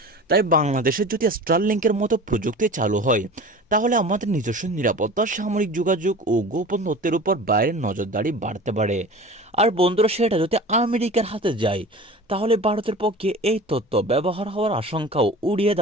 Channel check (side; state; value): both; normal; correlation 0.37